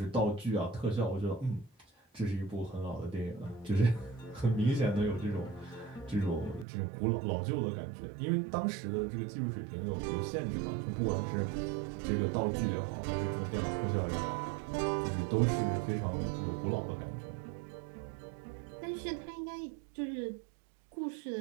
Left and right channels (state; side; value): drops out; left; at 6.7 s